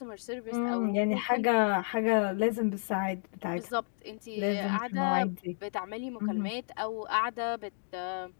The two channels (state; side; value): silent; right; digital silence